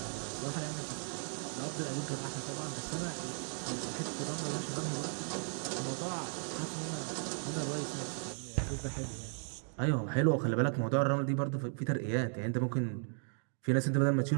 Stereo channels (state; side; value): silent; left; 54 dB below the other